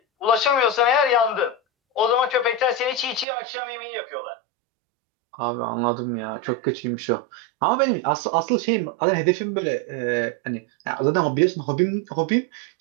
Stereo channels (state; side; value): drops out; left; at 3.2 s